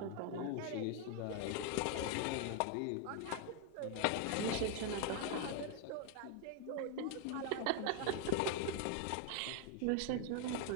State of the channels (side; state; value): both; different; correlation 0.00